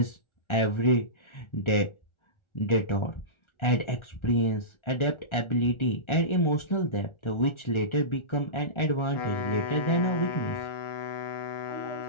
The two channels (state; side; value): late; right; 1.4 ms